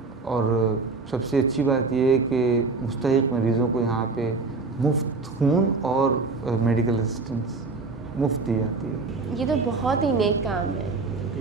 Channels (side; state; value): left; quieter; 4.0 dB